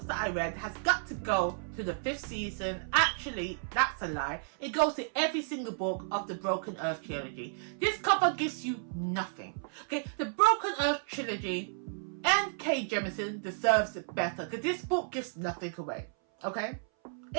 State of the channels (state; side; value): silent; left; 56 dB below the other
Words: that I read has got to go to the 5th season. Actually, that's a lie. It goes to every single book of the Broken Earth trilogy. This cover gives you nothing. Okay, the Broken Earth trilogy and Kay Jemisin deserves it better because this book gives nothing away. Okay,